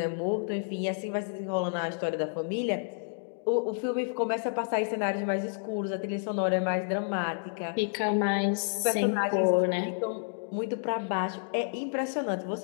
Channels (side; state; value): right; silent; digital silence